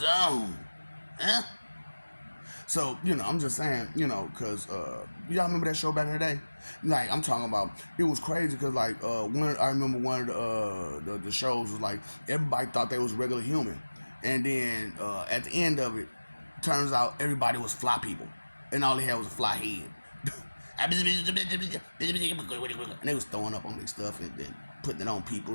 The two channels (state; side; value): inverted; both; correlation -1.00